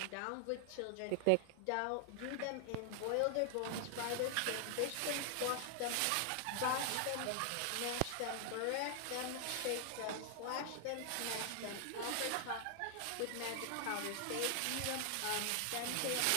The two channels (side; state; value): both; different; correlation 0.00